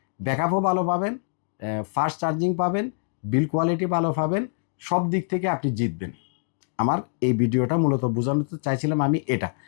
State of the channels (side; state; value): right; silent; digital silence